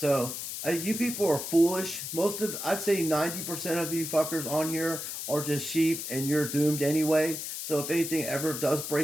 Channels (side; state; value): left; noise; hiss, 6 dB below the sound